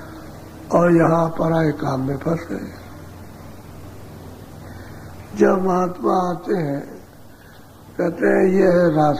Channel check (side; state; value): both; identical; correlation 1.00